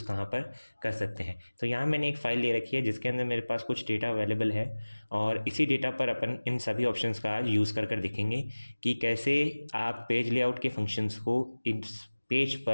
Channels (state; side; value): inverted; both; correlation -1.00